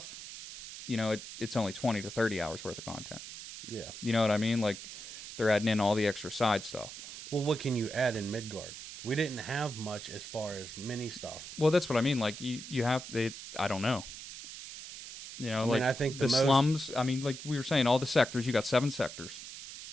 you know, it's only 20 to 30 hours worth of content. Yeah. You know what I mean? Like, they're adding in all the extra side stuff. Well, what can you add in Midgard? We didn't have much as far as mini stuff. Well, that's what I mean. Like, you have... I don't know. You know, I think the slums... I mean, like we were saying, all the sectors, you got 7 sectors.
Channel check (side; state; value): right; noise; hiss, 11 dB below the sound